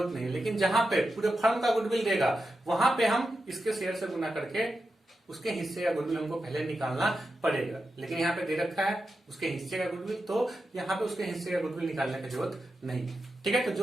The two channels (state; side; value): normal; both; correlation 0.89